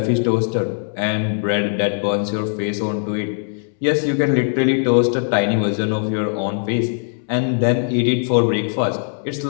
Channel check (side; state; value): right; silent; 66 dB below the other